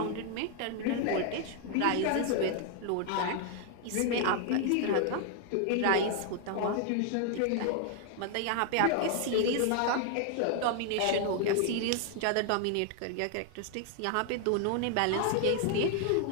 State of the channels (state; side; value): different; both; correlation 0.00